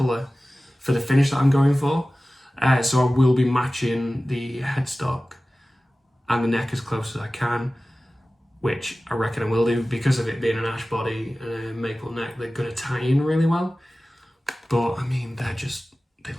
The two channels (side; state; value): both; normal; correlation 0.97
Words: for the finish that I'm going for, so I will be matching the headstock and the neck as close as I can, which I reckon I will do because of it being an ash body and a maple neck. They're going to tie in really well, but I mean they